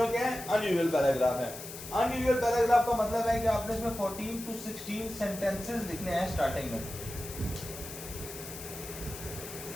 क्या है? अनयूजुअल पैराग्राफ है. अनयूजुअल पैराग्राफ का मतलब है कि आपने इसमें 14 to 16 सेंटेंसेस लिखने हैं स्टार्टिंग में.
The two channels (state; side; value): noise; left; hiss, 11 dB below the sound